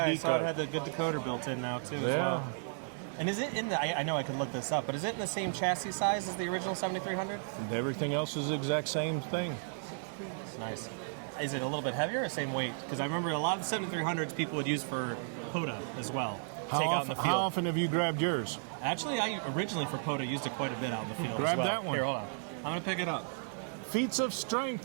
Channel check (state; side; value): silent; left; digital silence